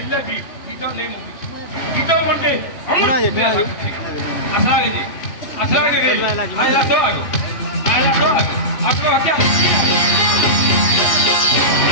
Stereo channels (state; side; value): late; right; 2.8 ms